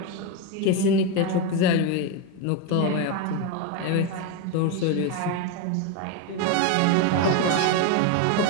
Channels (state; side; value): different; both; correlation 0.03